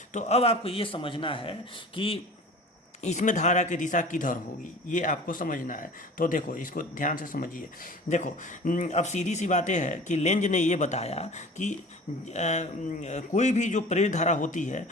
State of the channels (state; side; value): normal; both; correlation 0.41